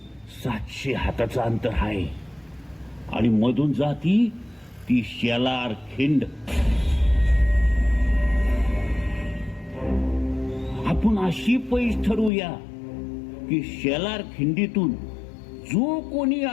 700 हाताचं अंतर आहे आणि मधून जाती ती शेलार खिंड. आपण अशी पैस ठरवूया की शेलार खिंडीतून जो कोणी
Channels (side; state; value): right; drops out; at 12.3 s